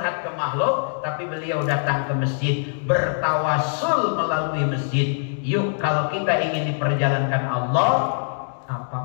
ke makhluk, tapi beliau datang ke masjid, bertawasul melalui masjid. Yuk, kalau kita ingin diperjalankan Allah,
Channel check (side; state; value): right; silent; digital silence